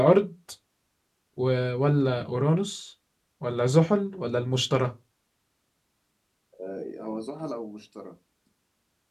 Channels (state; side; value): identical; both; correlation 1.00